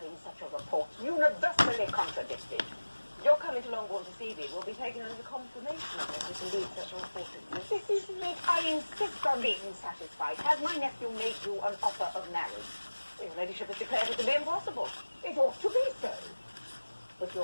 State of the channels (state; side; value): inverted; both; correlation -1.00